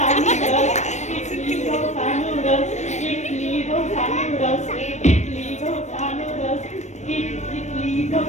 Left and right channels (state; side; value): late; right; 0.34 ms